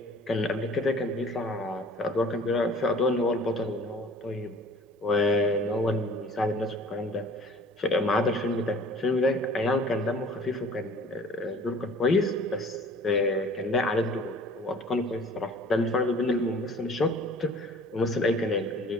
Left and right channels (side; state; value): both; normal; correlation 0.49